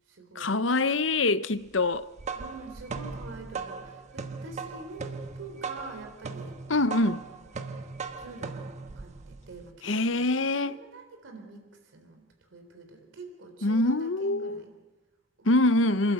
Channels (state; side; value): normal; both; correlation 0.22